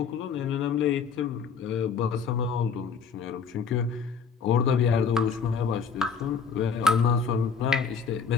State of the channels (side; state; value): right; quieter; 5.8 dB